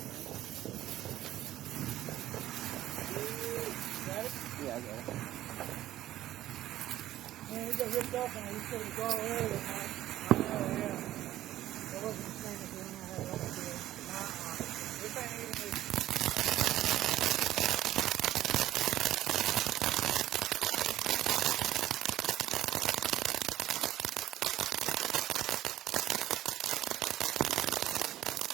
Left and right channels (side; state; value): left; quieter; 13.8 dB